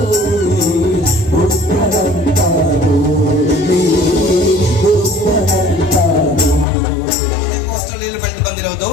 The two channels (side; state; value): right; drops out; at 6.7 s